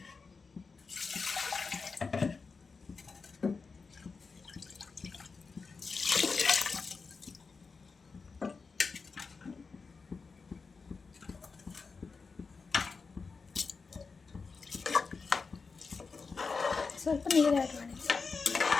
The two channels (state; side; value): quieter; right; 4.7 dB